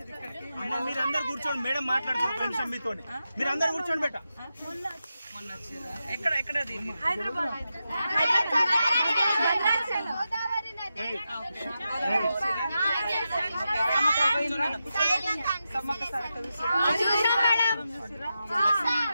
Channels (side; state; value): both; inverted; correlation -0.89